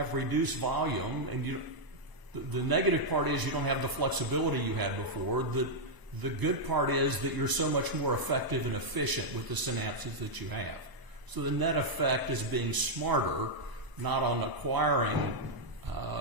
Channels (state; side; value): late; left; 1.0 ms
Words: reduced volume, and the negative part is you don't have the flexibility you had before, the good part is that you're so much more effective and efficient with the synapses that you have. So the net effect is being smarter, not on acquiring